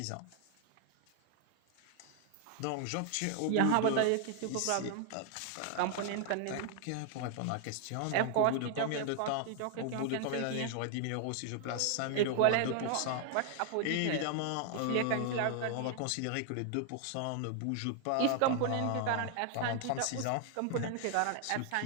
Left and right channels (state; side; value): different; both; correlation 0.00